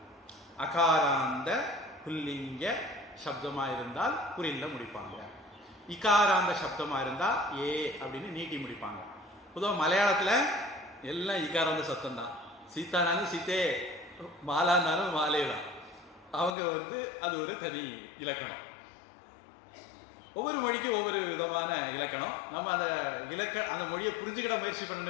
அகாராந்த புல்லிங்க சப்தமா இருந்தால் குறில்ல முடிப்பாங்க. இகாராந்த சப்தமா இருந்தா ஏ அப்படின்னு நீட்டி முடிப்பாங்க. பொதுவாக மலையாளத்தில் எல்லாம் இகாராந்த சப்தம் தான். சீதானாலும் சீத்தே, மாலானாலும் மாலே தான். அவங்க அது ஒரு தனி இலக்கணம். ஒவ்வொரு மொழிக்கும் ஒவ்வொரு விதமான இலக்கணம். நம்ம அந்த மொழியை புரிஞ்சுக்கிட முயற்சி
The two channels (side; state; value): right; drops out; at 16.6 s